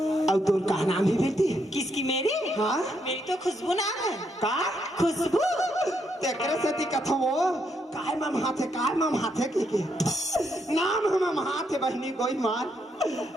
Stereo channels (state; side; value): normal; both; correlation 0.77